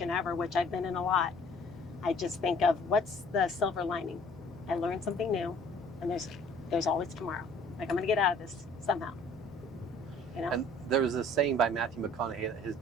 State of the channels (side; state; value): left; noise; hum, 22 dB below the sound